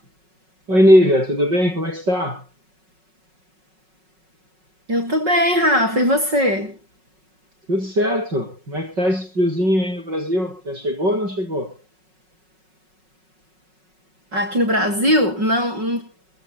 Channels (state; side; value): late; left; 5.4 ms